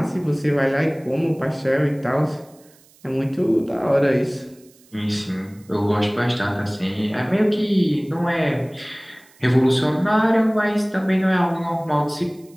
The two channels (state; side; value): noise; right; hiss, 29 dB below the sound